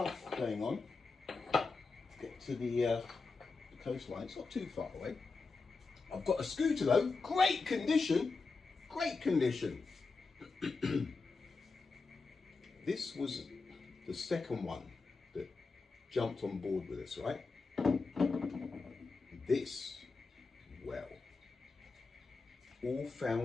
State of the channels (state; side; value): quieter; right; 4.2 dB